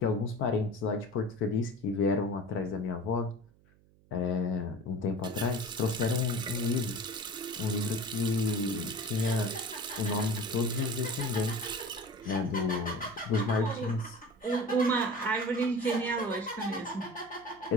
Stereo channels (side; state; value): right; noise; hum, 29 dB below the sound